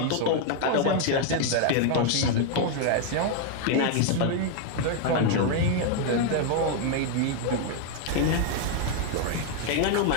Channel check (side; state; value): both; different; correlation 0.00